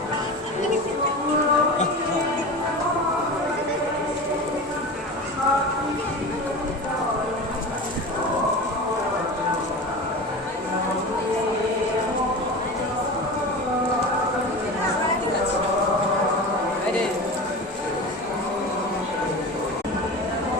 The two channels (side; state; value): both; normal; correlation 0.30